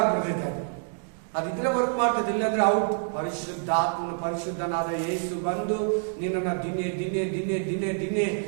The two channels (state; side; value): silent; left; digital silence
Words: ಅದಿದ್ರೆ ವರ್ಕ್ ಮಾಡ್ತದೆ, ಇಲ್ಲಾಂದ್ರೆ ಔಟ್. ಪರಿಶುದ್ಧಾತ್ಮನು, ಪರಿಶುದ್ಧನಾದ ಯೇಸು ಬಂದು ನಿನ್ನನ್ನ ದಿನೇ ದಿನೇ ದಿನೇ ದಿನೇ ದಿನೇ